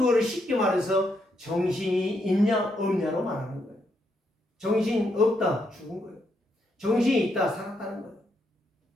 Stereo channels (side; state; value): both; normal; correlation 0.78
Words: 쉽게 말해서 정신이 있냐 없냐로 말하는 거예요. 정신 없다 죽은 거예요. 정신이 있다 살았다는 거예요.